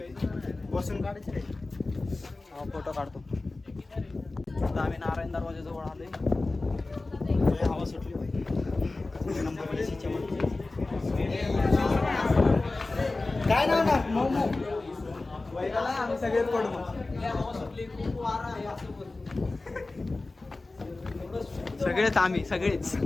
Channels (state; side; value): quieter; right; 3.3 dB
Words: बसून काढायचे रे. हा फोटो काढतो. आता आम्ही नारायण दरवाजाजवळ आलोय. हवा सुटली पाहिजे. नंबर प्लेटच्या मध्ये. काय नाव ना मोमो. आम्ही सगळेच पडू मग. सगळेच आम्ही सगळेच.